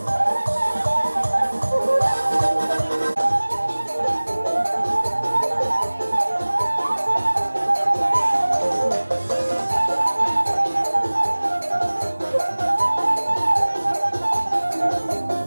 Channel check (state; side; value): inverted; both; correlation -1.00